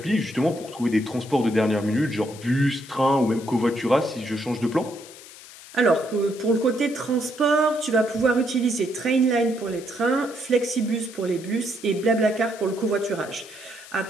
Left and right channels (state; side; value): noise; left; hiss, 18 dB below the sound